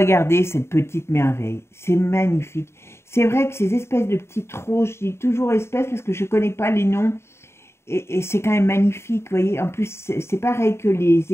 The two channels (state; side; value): late; right; 0.13 ms